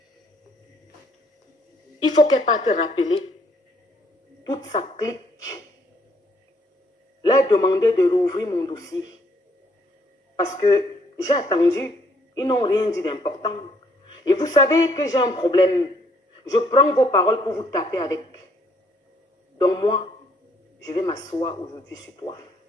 Il faut qu'elle parte rappeler toute sa clique. Leur demander de rouvrir mon dossier. Parce que j'ai attendu. Ils n'ont rien dit d'important. Et vous savez que j'ai un problème. Je prends vos paroles pour vous taper avec. Donc moi, je vais m'asseoir aujourd'hui sur toi.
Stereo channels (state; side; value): normal; both; correlation 0.67